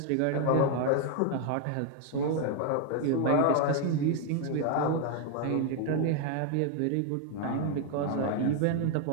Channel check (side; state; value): both; different; correlation 0.00